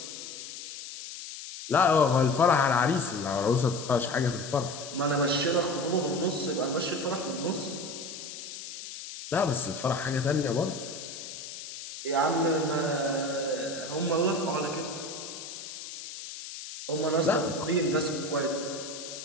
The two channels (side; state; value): left; noise; hiss, 11 dB below the sound